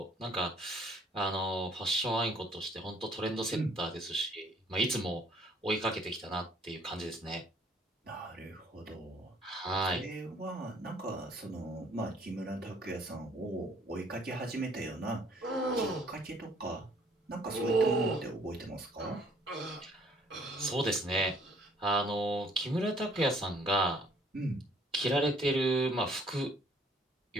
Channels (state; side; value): normal; both; correlation 0.61